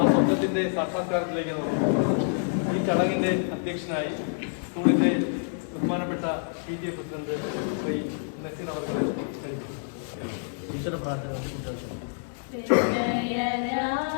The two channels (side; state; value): right; silent; digital silence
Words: സ്വപ്നത്തിന്റെ സാക്ഷാത്കാരത്തിലേക്ക് ഈ ചടങ്ങിന്റെ അധ്യക്ഷനായി സ്കൂളിന്റെ ബഹുമാനപ്പെട്ട PTA പ്രസിഡന്റ് ശ്രീ നസീർ അവരുടെ ഈശ്വര പ്രാർത്ഥന.